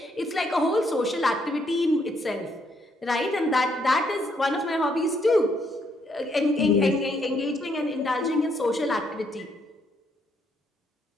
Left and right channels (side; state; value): both; normal; correlation 0.73